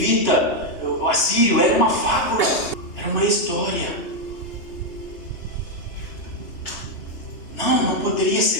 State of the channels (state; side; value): late; right; 2.9 ms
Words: o assírio, era uma fábula, era uma história. Não poderia